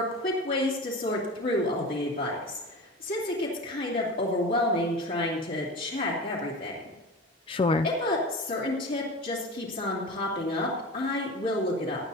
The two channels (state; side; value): normal; both; correlation 0.31